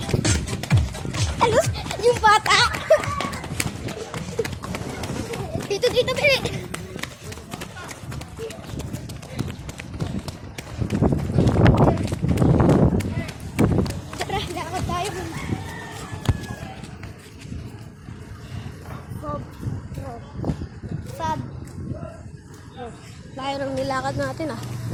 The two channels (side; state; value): both; identical; correlation 1.00